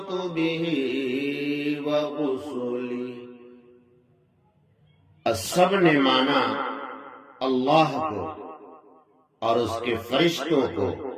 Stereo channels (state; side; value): identical; both; correlation 1.00